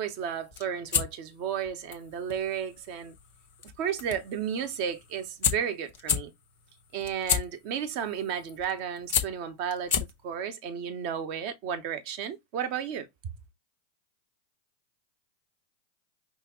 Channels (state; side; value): late; left; 2.9 ms